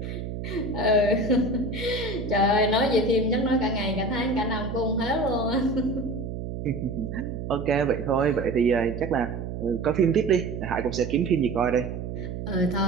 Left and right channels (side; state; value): right; noise; hum, 6 dB below the sound